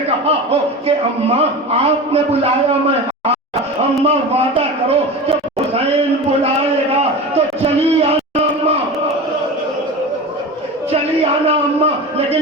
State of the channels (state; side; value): normal; both; correlation 0.29